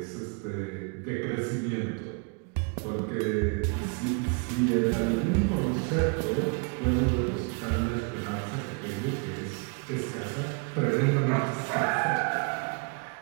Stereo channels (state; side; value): quieter; left; 34.3 dB